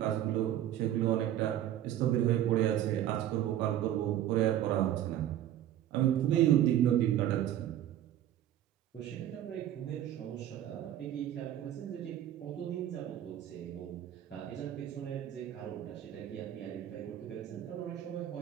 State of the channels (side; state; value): left; quieter; 12.0 dB